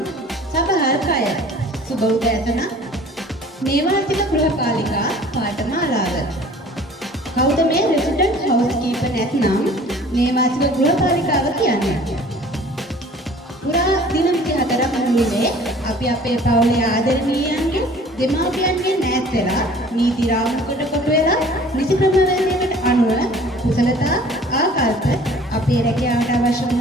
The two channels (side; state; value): both; normal; correlation 0.49